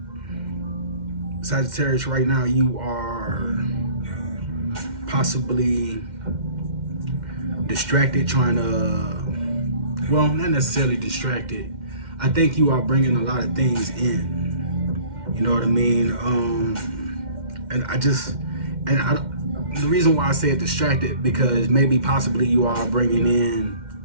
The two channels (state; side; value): late; left; 2.1 ms